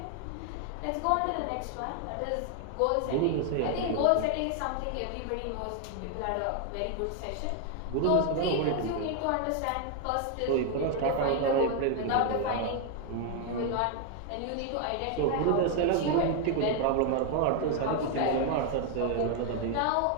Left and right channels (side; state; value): both; different; correlation 0.00